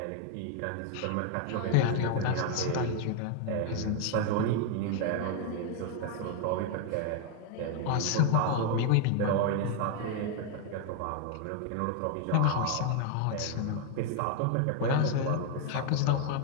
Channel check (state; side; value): different; both; correlation 0.00